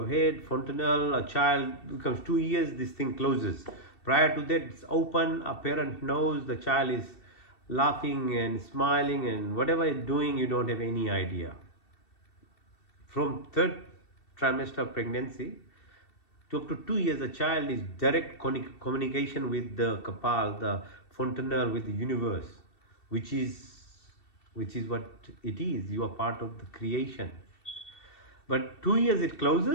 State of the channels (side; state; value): right; late; 2.7 ms